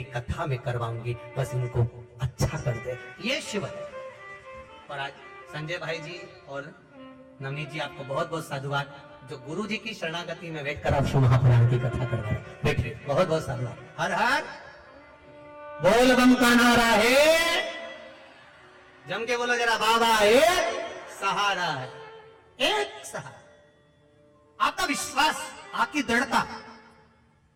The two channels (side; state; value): both; identical; correlation 1.00